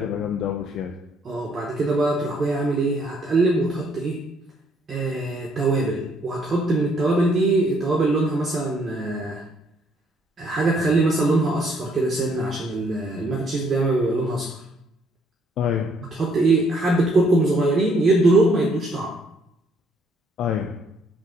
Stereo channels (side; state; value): both; normal; correlation 0.67